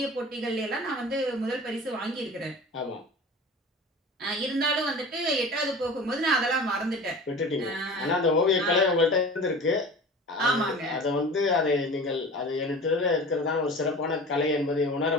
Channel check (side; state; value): both; normal; correlation 0.37